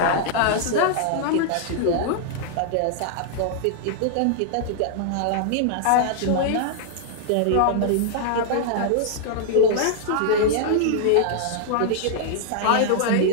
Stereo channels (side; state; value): both; different; correlation -0.01